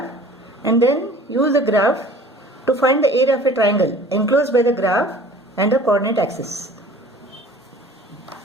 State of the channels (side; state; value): both; normal; correlation 0.47